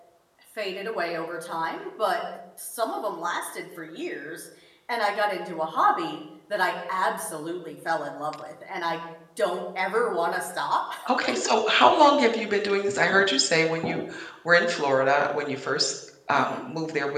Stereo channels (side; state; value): both; identical; correlation 1.00